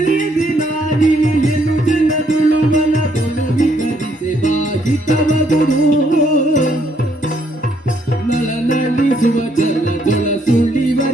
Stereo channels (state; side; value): normal; both; correlation 0.70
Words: ಇಳಿಯನು ಜಲದುಳು ವನದೊಳು ವಿಗರಿಸಿ ಬಾಹಿತವಗುದು ನಳನಳಿಸುವ ಜಲದೊಳ